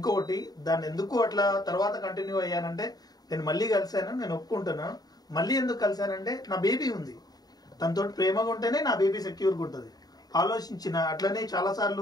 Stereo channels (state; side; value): late; right; 0.19 ms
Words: దాన్ని ఎందుకు అట్లా తర్వాత కంటిన్యూ అయ్యానంటే, నేను మళ్ళీ కలిశాను, నేను ఒప్పుకుంటున్నాను. మళ్ళీ ఎందుకు కలిశానంటే నా బేబీ ఉంది, తనతో ప్రేమగా ఉంటేనే నా బేబీ సెక్యూర్గా ఉంటుంది ఆలోచించిన. అట్లనే చాలా